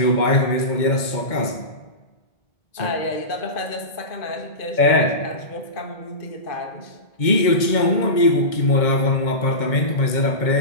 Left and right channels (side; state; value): right; late; 2.2 ms